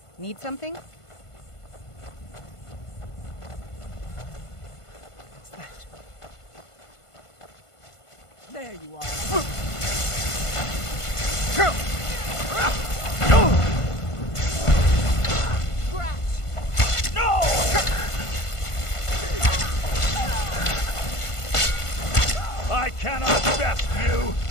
Need something? What's that? There you are. No! I cannot best you!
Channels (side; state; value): right; late; 1.5 ms